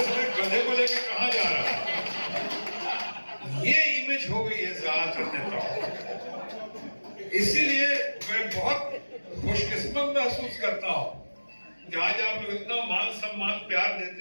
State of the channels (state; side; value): inverted; both; correlation -1.00